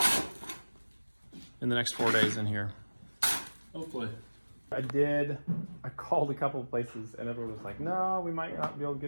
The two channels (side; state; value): both; inverted; correlation -1.00